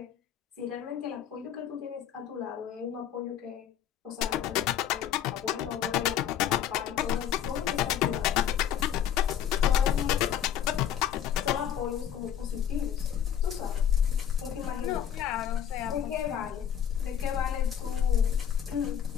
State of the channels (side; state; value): right; quieter; 9.5 dB